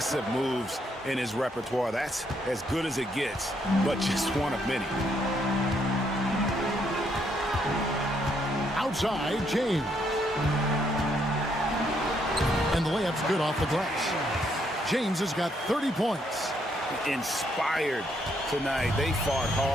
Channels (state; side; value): normal; both; correlation 0.73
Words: moves in his repertoire. That's as good as it gets, but just one of many. Outside, James. And the layup's good off the glass. James has got 30 points. Inspired tonight. They fought